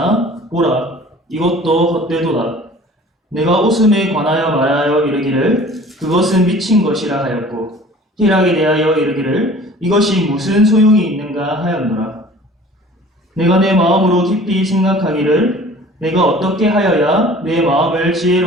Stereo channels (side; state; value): both; normal; correlation 0.47